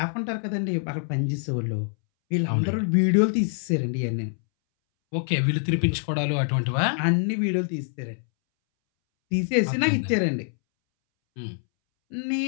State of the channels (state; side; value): silent; right; 62 dB below the other